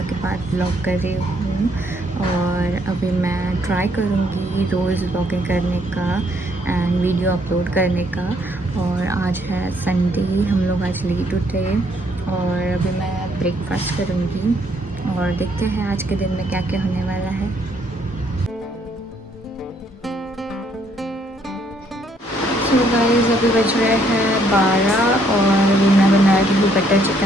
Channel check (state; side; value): normal; both; correlation 0.68